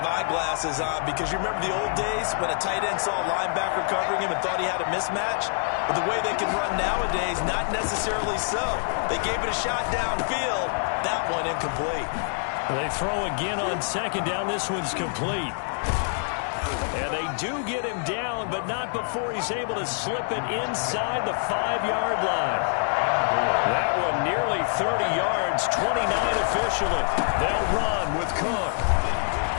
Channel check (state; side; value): silent; right; digital silence